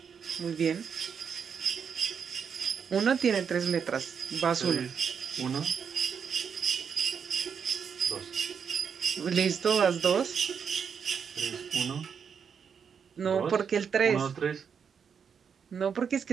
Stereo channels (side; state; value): left; quieter; 6.9 dB